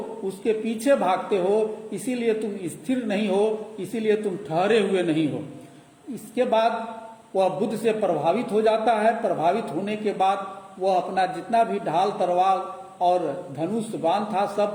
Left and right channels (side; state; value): both; identical; correlation 1.00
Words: उसके पीछे भागते हो, इसीलिए तुम स्थिर नहीं हो, इसीलिए तुम ठहरे हुए नहीं हो। इसके बाद वह बुद्ध से प्रभावित हो जाता है। प्रभावित होने के बाद वह अपना जितना भी ढाल तलवार और धनुष बाण था